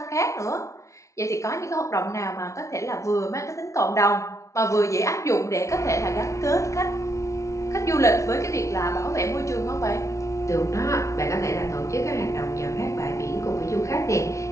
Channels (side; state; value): right; late; 0.14 ms